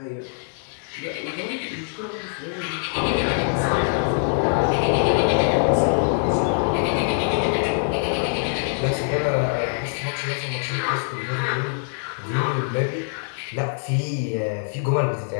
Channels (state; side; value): silent; right; 63 dB below the other